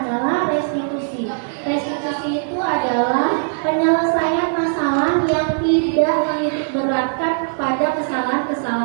adalah restitusi. Restitusi itu adalah penyelesaian masalah yang tidak menitik beratkan pada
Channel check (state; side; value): silent; left; 61 dB below the other